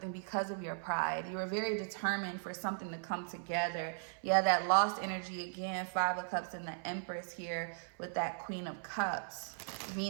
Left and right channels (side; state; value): left; silent; 53 dB below the other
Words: because of your pride. You are very determined for something to come together. Yeah, that lost energy again, 5 of Cups and the Empress here with that Queen of Cups,